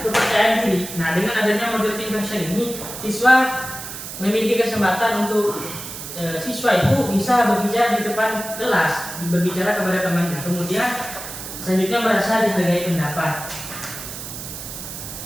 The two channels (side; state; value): right; noise; hiss, 9 dB below the sound